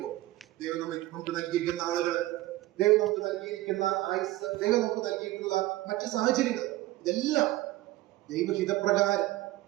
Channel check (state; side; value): quieter; left; 17.3 dB